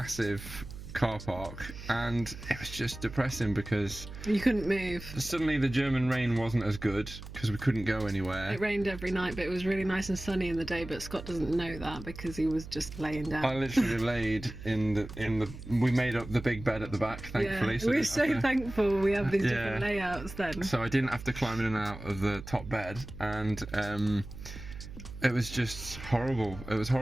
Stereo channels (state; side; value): noise; right; hum, 12 dB below the sound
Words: car park, and it was just depressing because you couldn't move. Suddenly the German rain wasn't as good because we couldn't go anywhere. It rained every night, but it was really nice and sunny in the day, but Scott doesn't know that because he was just laying down. I literally laid in the we made up the big bed at the back, thankfully. Yeah, so we're so thankful we have these different layouts then. So I didn't have to climb in and out of the top bed, and it was just horrible. It was